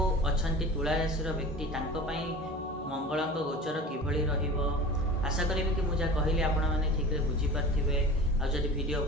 अछंती तुला राशि व्यक्ति तांको पई मंगलंक गोचर किभଳି रहिबो। आशा करिबे कि मुझा कहली आपण माने ठीक रे बुझी पारथिबे। आ जदि वीडियो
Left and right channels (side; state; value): both; normal; correlation 0.37